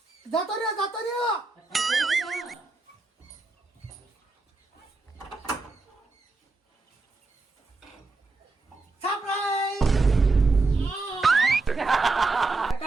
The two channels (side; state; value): left; quieter; 3.6 dB